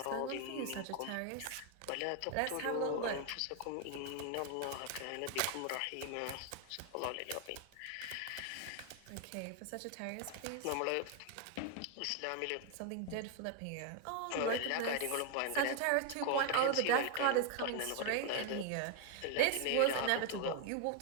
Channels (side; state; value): both; different; correlation 0.00